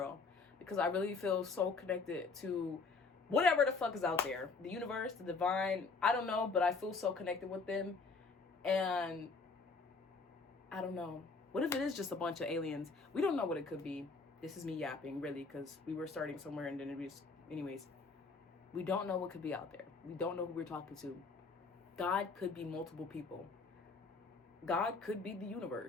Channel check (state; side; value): quieter; right; 4.3 dB